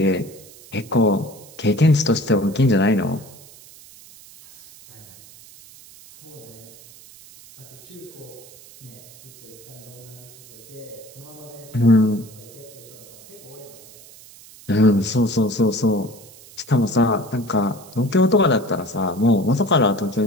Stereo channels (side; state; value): right; noise; hiss, 21 dB below the sound